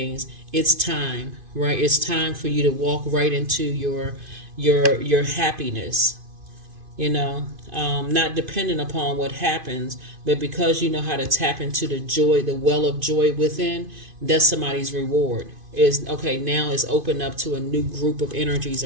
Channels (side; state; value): left; late; 2.5 ms